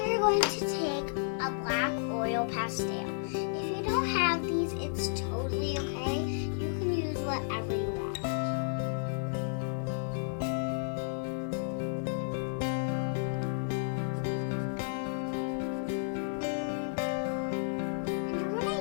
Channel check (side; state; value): right; silent; digital silence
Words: you're going to take a black oil pastel. If you don't have these, it's totally okay. You can use whatever you want.